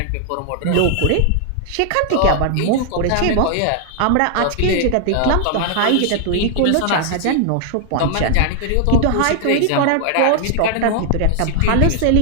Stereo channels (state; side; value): different; both; correlation 0.00